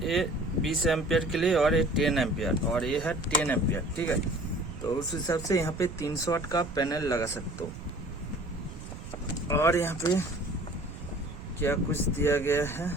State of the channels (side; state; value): right; noise; rumble, 12 dB below the sound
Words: ए 20 एम्पियर के लिए और ये 10 एम्पियर और ये है 10 एम्पियर, ठीक है। तो उस हिसाब से यहाँ पे 300 वाट का पैनल लगा सकते हो। और यहाँ पे क्या कुछ दिया गया है,